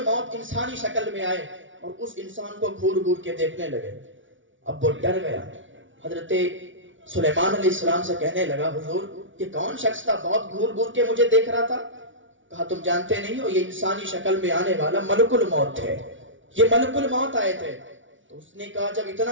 انسانی شکل میں آئے اور اس انسان کو گھور گھور کے دیکھنے لگے. اب وہ ڈر گیا. حضرت سلیمان علیہ السلام سے کہنے لگا حضور یہ کون شخص تھا, بہت گھور گھور کے مجھے دیکھ رہا تھا؟ کہا تم جانتے نہیں ہو, یہ انسانی شکل میں آنے والا ملک الموت تھے, یہ ملک الموت آئے تھے. تو اس نے کہا جب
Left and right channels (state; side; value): late; left; 0.56 ms